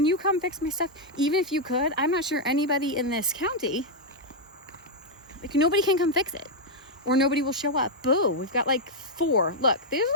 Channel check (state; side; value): normal; both; correlation -0.03